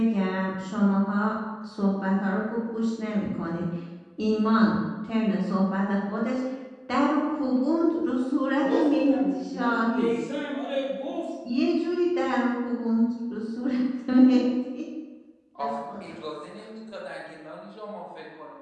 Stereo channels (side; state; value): both; identical; correlation 1.00